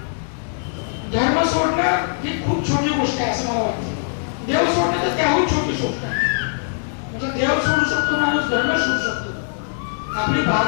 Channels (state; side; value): silent; right; 65 dB below the other